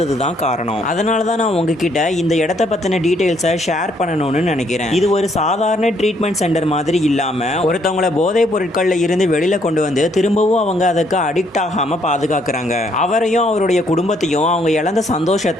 தான் காரணம். அதனாலதான் நான் உங்ககிட்ட இந்த இடத்த பத்தின டீடைல்ஸை ஷேர் பண்ணணும்னு நினைக்கிறேன். இது ஒரு சாதாரண ட்ரீட்மெண்ட் சென்டர் மாதிரி இல்லாம ஒருத்தவங்கள போதைப் பொருட்கள்ல இருந்து வெளியில கொண்டு வந்து திரும்பவும் அவங்க அதுக்கு அடிக்ட் ஆகாம பாதுகாக்கிறாங்க. அவரையும் அவருடைய குடும்பத்தையும் அவங்க இழந்த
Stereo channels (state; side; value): normal; both; correlation 0.69